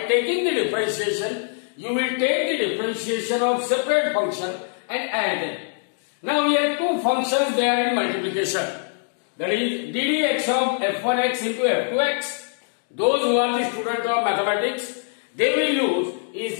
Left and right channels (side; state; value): right; silent; digital silence